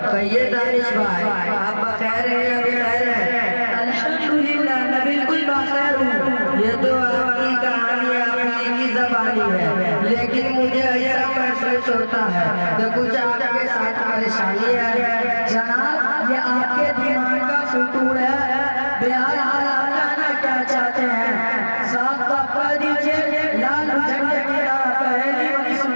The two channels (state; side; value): inverted; both; correlation -1.00